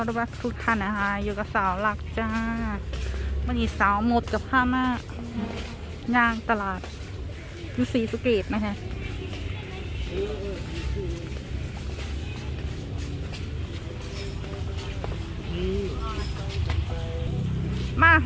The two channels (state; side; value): identical; both; correlation 1.00